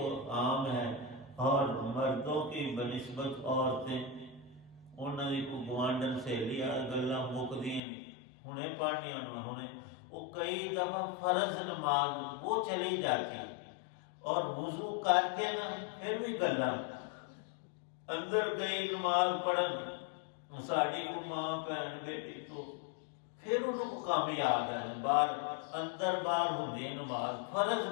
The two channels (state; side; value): drops out; right; at 7.8 s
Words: عام ہے، اور مردوں کی بنسبت عورتیں، انہوں نے کو گوانڈن سے لیا گلاں مکدی ہنے پڑھنی، انہیں وہ کئی دفعہ فرض نماز وہ چلی جاتی، اور وضو کر کے نا پھر بھی گلاں اندر گئی نماز پڑھن، ساڑی کو ماں بہن بیٹی، تو پھر انہوں کو کام یاد ہے، باہر اندر باہر ہوندی نماز، فرض